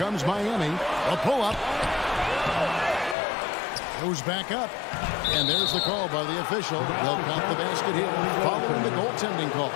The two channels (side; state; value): right; drops out; at 3.2 s